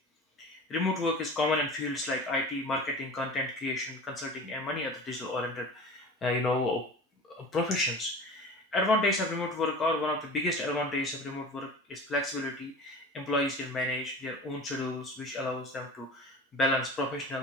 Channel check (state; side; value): normal; both; correlation 0.36